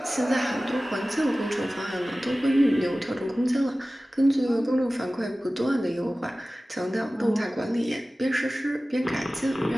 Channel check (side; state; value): both; normal; correlation 0.97